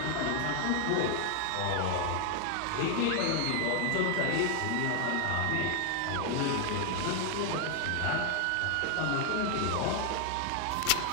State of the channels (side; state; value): both; different; correlation 0.00